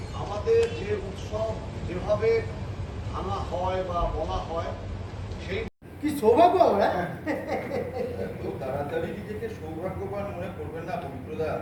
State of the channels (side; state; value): both; identical; correlation 1.00